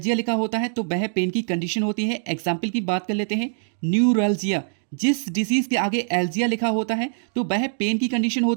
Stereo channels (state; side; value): silent; left; digital silence